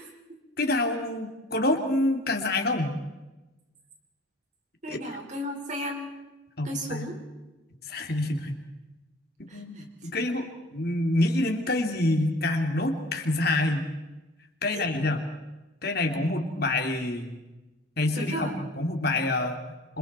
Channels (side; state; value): both; normal; correlation 0.49